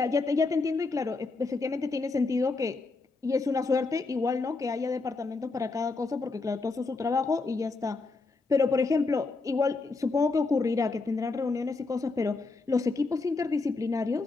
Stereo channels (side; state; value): right; quieter; 3.9 dB